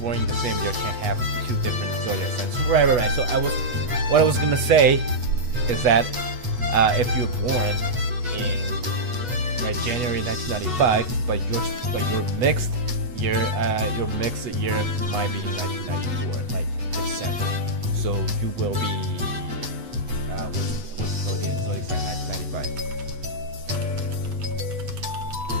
in the same year can have two different zodiac signs. Right. So what I was gonna say is that if you're born in January 1995, but your mixed year might be in 1994, like December. So you will be what's zodiac sign 1995?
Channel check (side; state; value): left; late; 8.2 ms